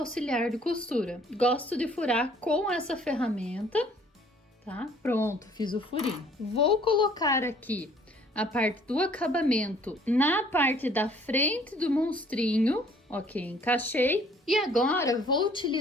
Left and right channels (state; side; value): normal; both; correlation 0.58